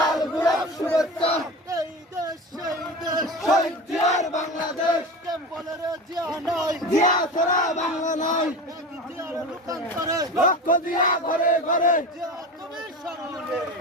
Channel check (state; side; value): normal; both; correlation 0.29